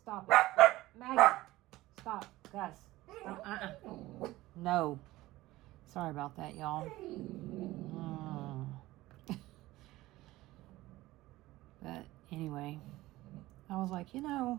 it. Maggie, stop. Gus, stop. No. Sorry about that, y'all. But anyway, I was like, you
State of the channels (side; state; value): left; quieter; 17.7 dB